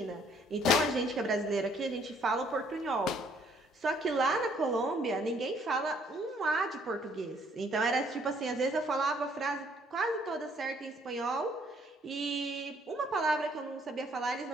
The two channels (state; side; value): normal; both; correlation 0.64